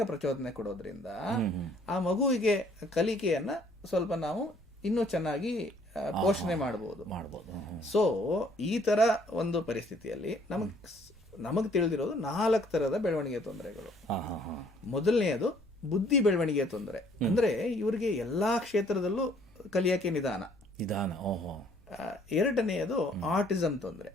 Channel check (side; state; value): left; noise; hum, 28 dB below the sound